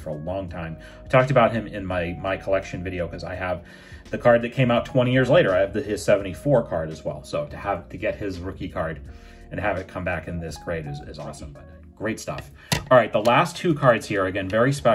a long time. I talked about him in my collection video because I have the card that came out 20 years later. I have his 74 card as well. So to get his rookie card and have it come back in this grade is awesome. But great stuff. All right, the last two cards here, again, very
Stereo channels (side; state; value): both; identical; correlation 1.00